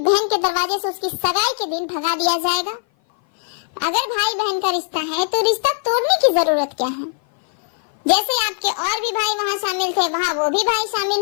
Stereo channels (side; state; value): right; silent; 57 dB below the other